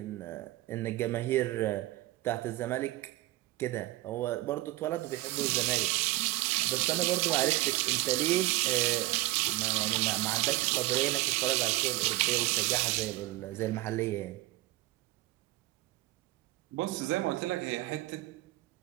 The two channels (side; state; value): left; quieter; 18.3 dB